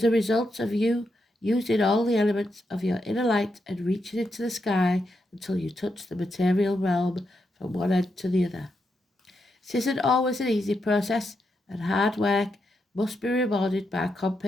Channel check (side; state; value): both; normal; correlation 0.83